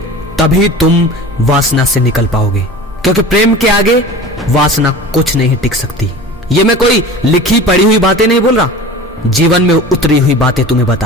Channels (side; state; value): both; normal; correlation 0.37